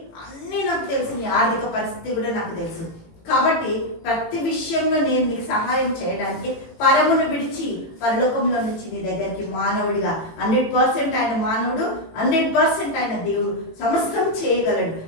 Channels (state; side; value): late; right; 18 ms